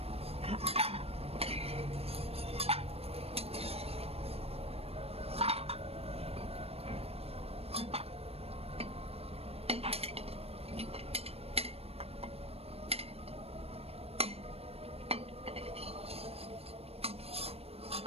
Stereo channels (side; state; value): left; late; 0.29 ms